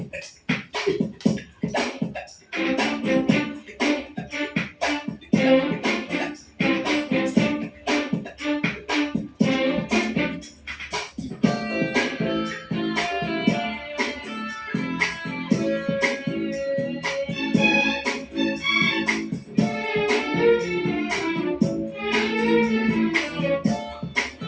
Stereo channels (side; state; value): both; identical; correlation 1.00